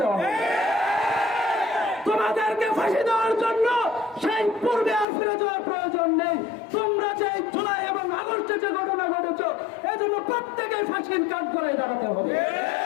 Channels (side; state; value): right; drops out; at 5.1 s